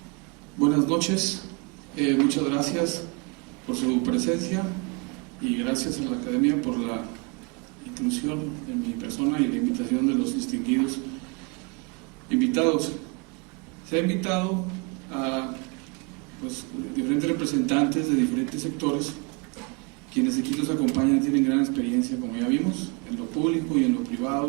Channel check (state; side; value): quieter; left; 31.7 dB